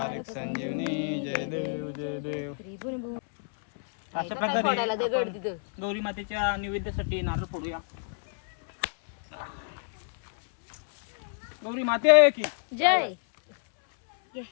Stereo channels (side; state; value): right; silent; 59 dB below the other